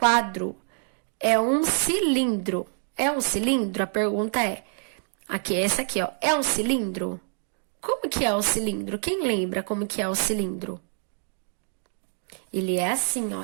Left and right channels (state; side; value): silent; left; 61 dB below the other